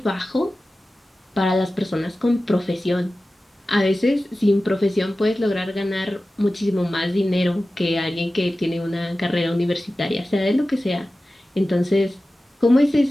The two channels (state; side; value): normal; both; correlation 0.95